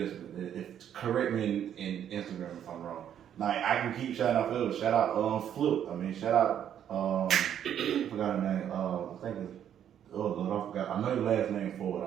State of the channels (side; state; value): left; quieter; 9.7 dB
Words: If correct me in Instagram if I'm wrong. Like I can keep shouting out others. Shout out Flip. I mean shout out I forgot her name. I think it's oh Lord, I forgot. I know your last name for it,